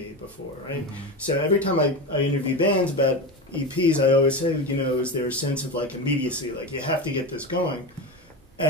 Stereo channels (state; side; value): normal; both; correlation 0.21